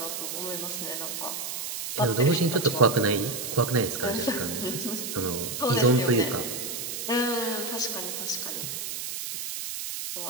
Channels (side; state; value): right; noise; hiss, 5 dB below the sound